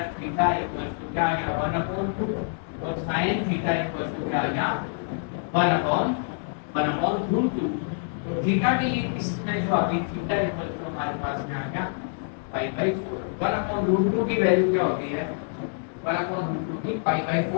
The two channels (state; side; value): silent; right; digital silence